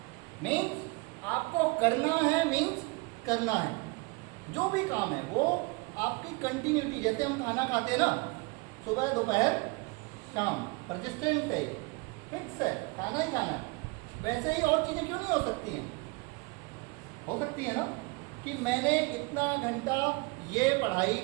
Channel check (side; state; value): left; quieter; 27.4 dB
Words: मीन्स आपको करना है, मीन्स करना है। जो भी काम है वो आपकी कंटिन्यूटी, जैसे हम खाना खाते हैं ना, सुबह दोपहर शाम, परसिस्टेंट है, फिक्स है, खाना ही खाना है। वैसे ही और चीज़ें क्यों नहीं हो सकती हैं? हो सकती है ना, कि मैंने इतना घंटा ये पढ़ाई